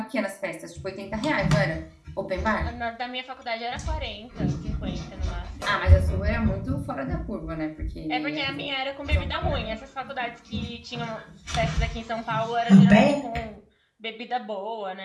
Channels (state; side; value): identical; both; correlation 1.00